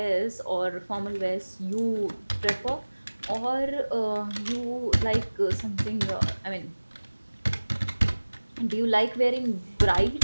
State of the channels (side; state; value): both; inverted; correlation -1.00